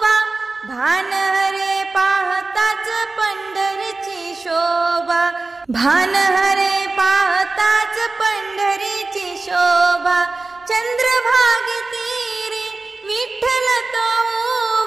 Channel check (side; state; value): left; quieter; 3.5 dB